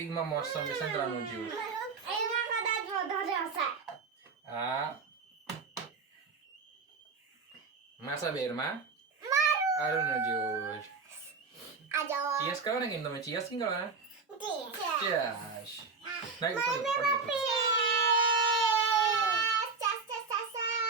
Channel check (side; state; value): left; quieter; 4.7 dB